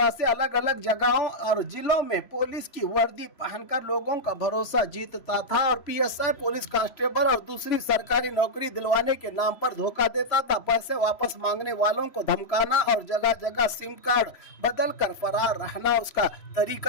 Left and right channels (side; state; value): right; late; 3.0 ms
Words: से अलग अलग जगहों और जिलों में पुलिस की वर्दी पहनकर लोगों का भरोसा जीतता था और पीएसआई, पुलिस कांस्टेबल और दूसरी सरकारी नौकरी दिलवाने के नाम पर धोखा देता था। पैसे वापस मांगने वालों को धमकाना और जगह जगह सिम कार्ड बदल कर फरार रहना उसका